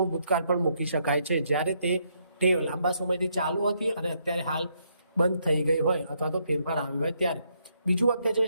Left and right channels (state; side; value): inverted; both; correlation -0.74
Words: ભૂતકાળ પણ મૂકી શકાય છે જ્યારે તે ટેવ લાંબા સમયથી ચાલુ હતી અને અત્યારે હાલ બંધ થઈ ગઈ હોય અથવા તો ફેરફાર આવ્યો હોય ત્યારે. બીજું વાક્ય છે,